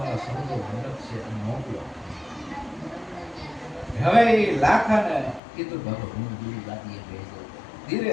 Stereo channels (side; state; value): right; drops out; at 5.4 s